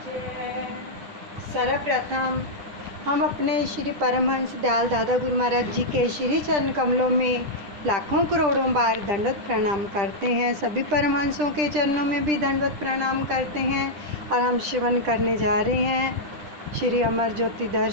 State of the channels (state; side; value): late; left; 10 ms